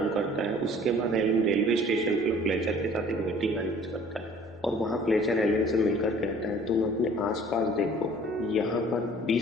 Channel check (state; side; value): normal; both; correlation 0.52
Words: करता है। उसके बाद एलन रेलवे स्टेशन पर फ्लेचर के साथ एक मीटिंग अरेंज करता है और वहाँ फ्लेचर एलन से मिलकर कहता है तुम अपने आसपास देखो, यहाँ पर